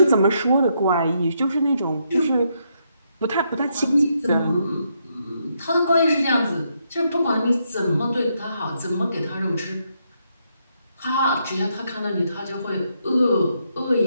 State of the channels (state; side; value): inverted; both; correlation -0.77